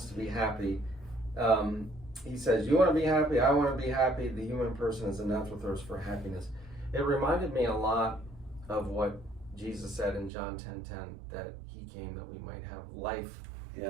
to be happy. He says, you want to be happy, I want to be happy. The human person is a natural thirst for happiness. It reminded me a lot of what Jesus said in John 10:10, that he came that we might have life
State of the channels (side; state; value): left; drops out; at 10.3 s